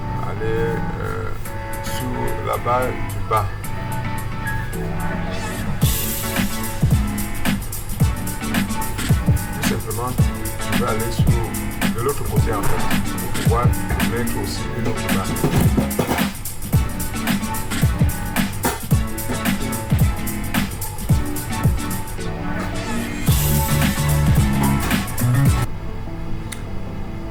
aller sur la barre du bas. Tout simplement, je vais aller sur de l'autre côté en fait pour pouvoir mettre aussi une autre barre.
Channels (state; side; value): identical; both; correlation 1.00